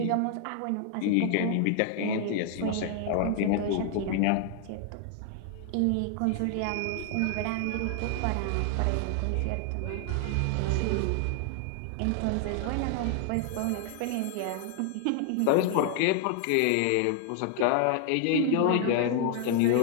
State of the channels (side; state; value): both; different; correlation 0.00